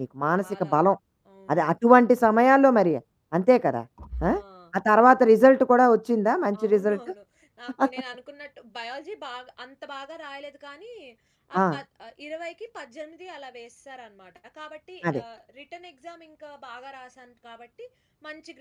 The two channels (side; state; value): both; identical; correlation 1.00